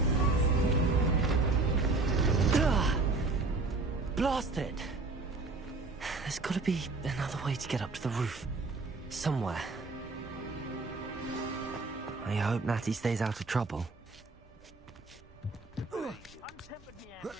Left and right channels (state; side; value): quieter; left; 3.6 dB